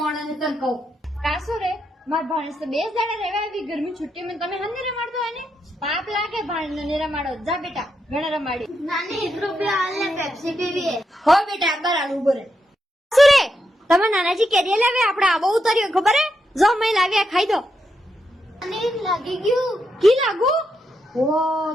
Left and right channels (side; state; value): both; normal; correlation 0.83